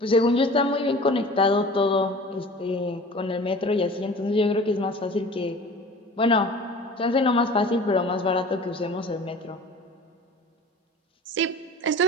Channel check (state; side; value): normal; both; correlation 0.41